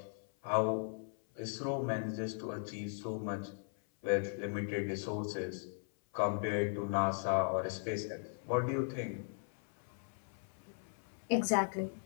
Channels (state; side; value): silent; right; 52 dB below the other